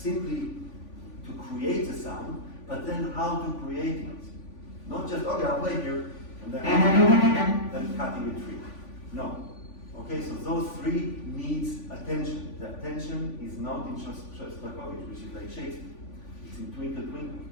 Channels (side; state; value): right; late; 3.5 ms